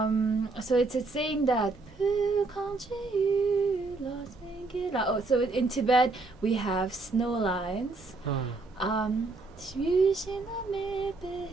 so it's saying that. Oh, so in Tibet we have snow lines.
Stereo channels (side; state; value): left; quieter; 3.5 dB